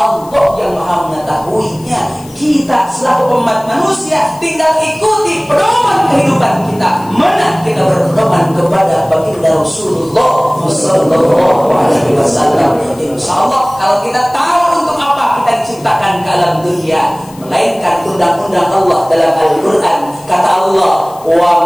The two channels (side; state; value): left; noise; hiss, 23 dB below the sound